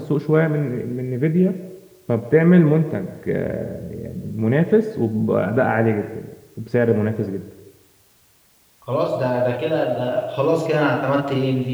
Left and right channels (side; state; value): both; identical; correlation 1.00